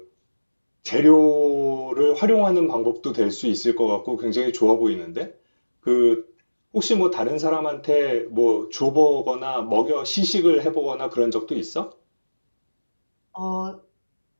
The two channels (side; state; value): both; inverted; correlation -1.00